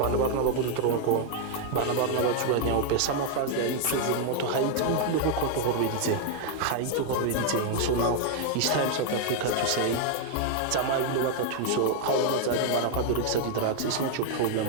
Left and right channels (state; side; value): different; both; correlation 0.00